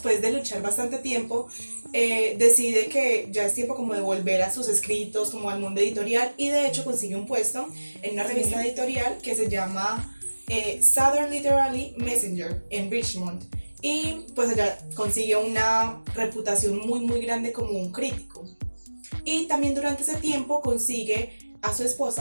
de luchar bastante tiempo, decide que ya es tiempo como de volver a sus escritos, como al mundo editorial, y de hecho consigue un puesto en una revista editorial que se llama Southern Literary Messenger en Richmond, y pues allá consigue una reputación muy grande como un crítico. Y también durante ese tiempo consigue a su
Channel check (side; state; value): both; inverted; correlation -1.00